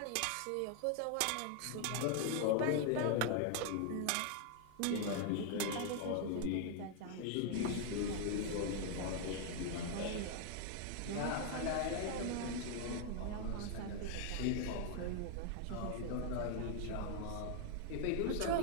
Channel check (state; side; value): different; both; correlation 0.00